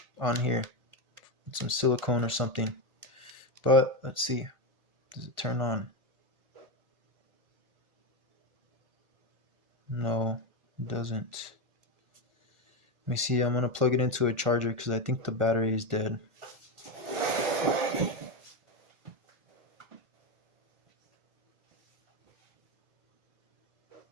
on here with some silicone or something. But let's see. Does it turn on? No, it doesn't. Let me see. I'm going to plug it into a charger because I think the battery is dead.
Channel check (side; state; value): left; late; 1.5 ms